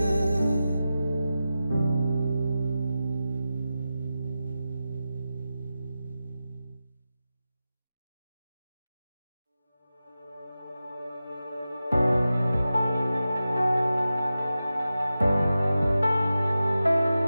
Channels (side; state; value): both; inverted; correlation -0.93